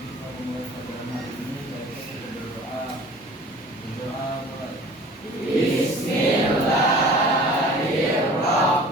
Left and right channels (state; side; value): normal; both; correlation 0.45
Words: kita memulai pelajaran hari ini, kita berdoa. Berdoa mulai.